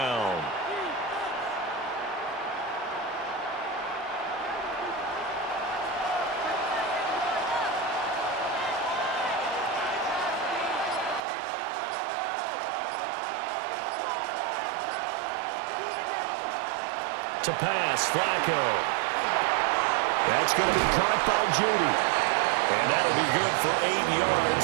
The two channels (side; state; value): left; drops out; at 11.2 s